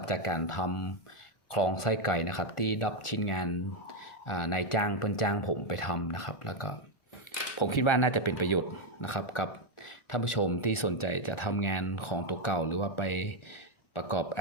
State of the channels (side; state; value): right; late; 1.4 ms